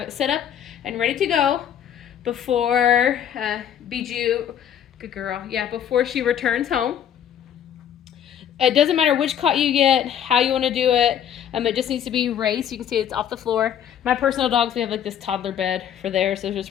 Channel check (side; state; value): right; quieter; 9.6 dB